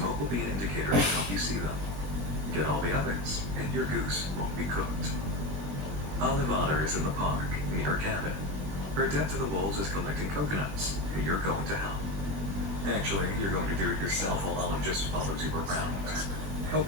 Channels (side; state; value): left; late; 20 ms